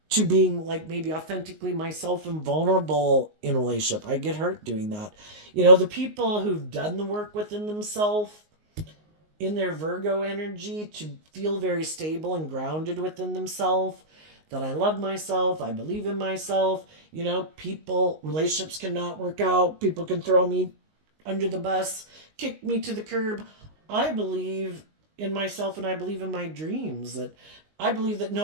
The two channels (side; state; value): left; late; 19 ms